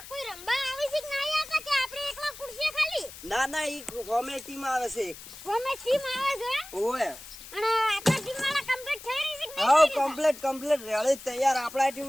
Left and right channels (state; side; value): noise; left; hiss, 15 dB below the sound